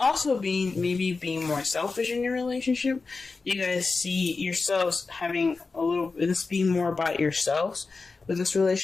be maybe being more selfish in your relationship. You guys see yourselves having this being more about yourselves with this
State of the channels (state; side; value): quieter; right; 4.1 dB